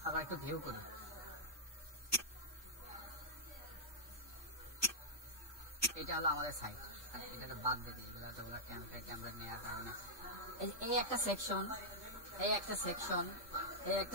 আবার একটু ভিউ করি। এটা হলো আমাদের সাইট, এটা বাদ দিতে এগুলো এতগুলো টেমপ্লেট নেওয়ার কারণে এই একটা সেকশন, এই একটা সেকশন, এই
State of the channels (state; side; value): normal; both; correlation -0.08